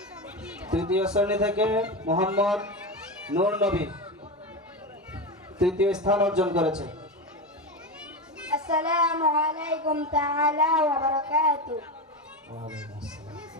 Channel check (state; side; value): normal; both; correlation 0.18